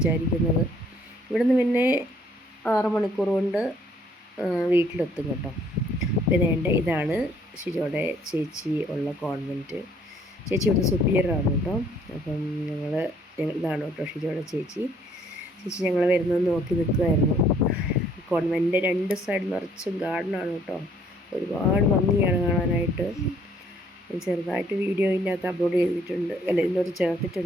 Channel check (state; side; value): normal; both; correlation 0.63